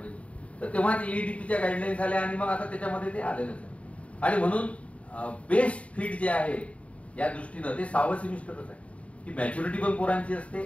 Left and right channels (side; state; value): right; late; 0.065 ms